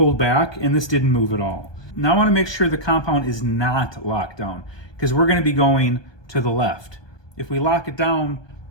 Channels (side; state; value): right; late; 1.2 ms